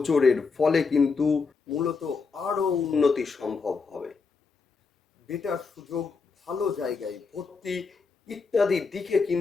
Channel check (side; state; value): right; quieter; 4.8 dB